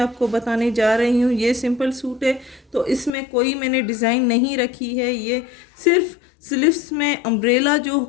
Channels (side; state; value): right; drops out; at 3.1 s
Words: बताने जा रही हूँ। ये सिंपल सूट है तो इसमें कोई मैंने डिज़ाइन नहीं रखी है। ये सिर्फ स्लीव्स में अम्ब्रेला जो